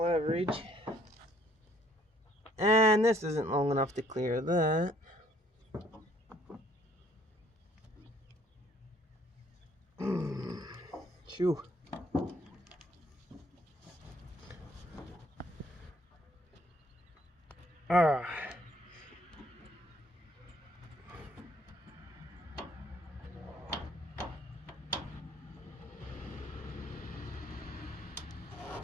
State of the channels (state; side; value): normal; both; correlation 0.62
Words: And this isn't long enough to clear that. Phew.